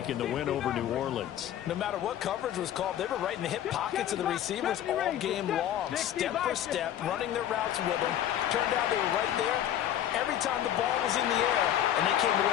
in the win over New Orleans. No matter what coverage was called, they were right in the hip pockets of the receivers all game long, step for step, running their routes with them. Turned out they were right there every time the ball was in the air, and they came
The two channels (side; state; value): right; quieter; 11.2 dB